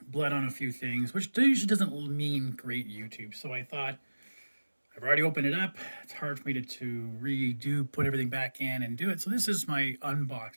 bled on a few things, which usually doesn't mean great YouTube. So I thought, I've already opened it up. It's hard for me to redo, put everything back in and do it. So this is my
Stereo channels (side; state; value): both; inverted; correlation -1.00